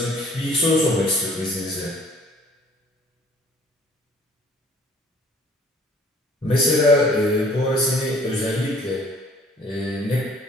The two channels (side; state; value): both; normal; correlation 0.55